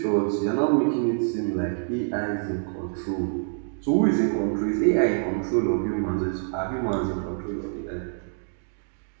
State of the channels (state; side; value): silent; left; digital silence